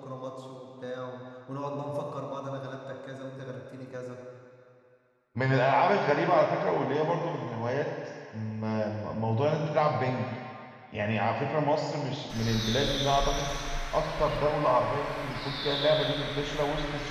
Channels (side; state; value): both; identical; correlation 1.00